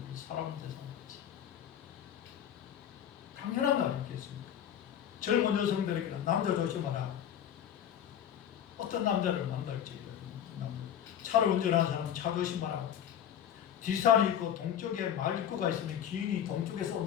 사람을 대상하겠지. 당연한 거 아니겠습니까? 젊은 여성들에게는 남자 조심하라. 어떤 남자를 만날지. 차를 운전하는 사람은 차 조심하라. 뒷산이 있고 동쪽에 말 입구가 있으면 기인이 동쪽에서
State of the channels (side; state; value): right; quieter; 9.7 dB